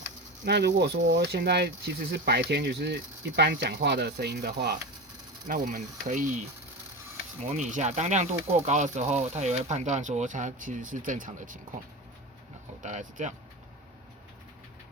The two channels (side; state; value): both; normal; correlation 0.24